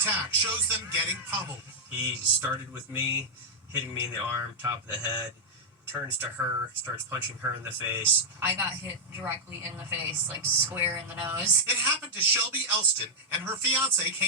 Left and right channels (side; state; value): both; normal; correlation -0.06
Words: shows them getting pummeled. He started with me, hitting me in the arm, top of the head, turns to her, starts punching her in the face. I got hit directly in the face, like square in the nose. It happened to Shelby Elston and her fiance,